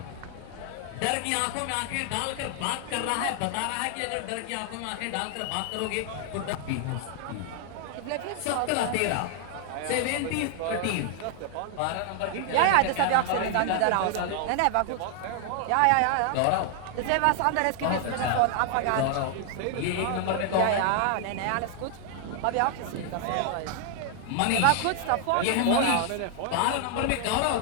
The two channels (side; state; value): both; different; correlation 0.00